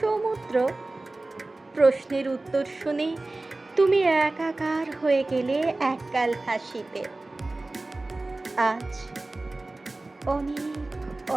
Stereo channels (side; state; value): left; quieter; 3.0 dB